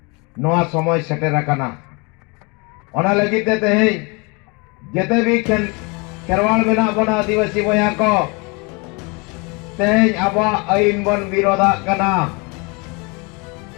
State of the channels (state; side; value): quieter; right; 29.8 dB